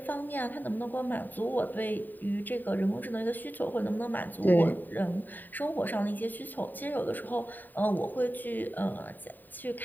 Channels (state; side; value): late; right; 0.089 ms